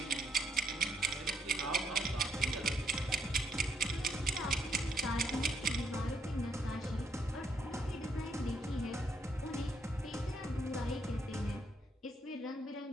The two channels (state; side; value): normal; both; correlation 0.74